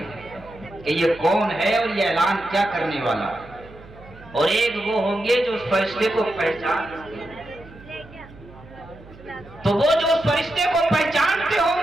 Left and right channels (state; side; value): noise; right; hum, 20 dB below the sound